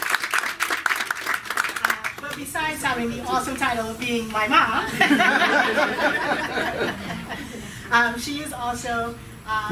But besides having the awesome title of being my mom, she is also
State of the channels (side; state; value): both; identical; correlation 1.00